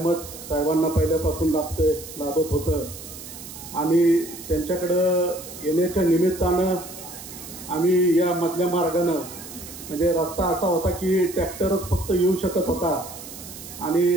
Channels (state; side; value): noise; right; hiss, 13 dB below the sound